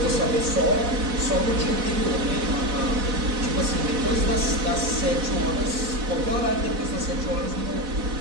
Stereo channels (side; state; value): left; late; 4.1 ms